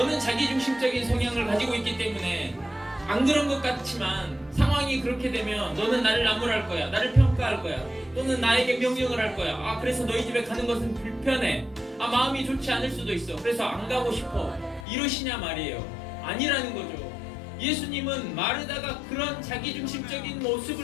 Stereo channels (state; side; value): drops out; right; at 14.9 s